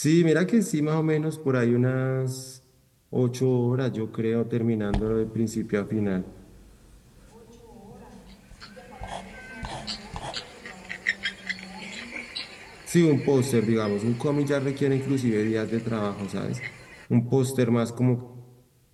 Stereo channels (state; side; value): identical; both; correlation 1.00